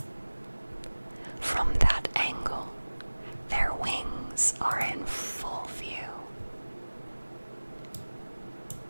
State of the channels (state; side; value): inverted; both; correlation -1.00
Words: From that angle, their wings are in full view.